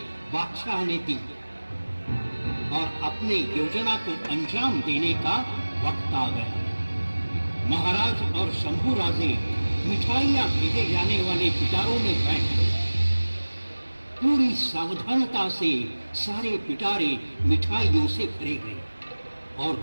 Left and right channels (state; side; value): inverted; both; correlation -1.00